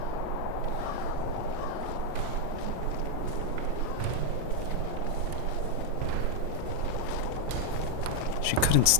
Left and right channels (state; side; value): different; both; correlation 0.01